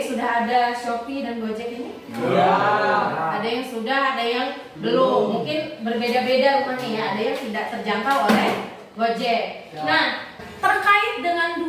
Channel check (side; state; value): both; identical; correlation 1.00